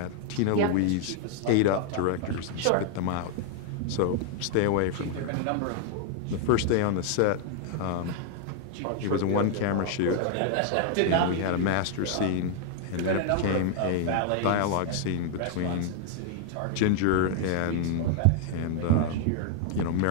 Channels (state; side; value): different; both; correlation 0.00